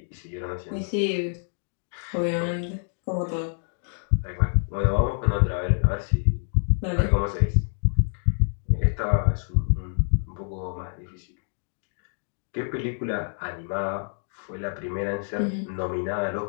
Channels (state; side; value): silent; right; digital silence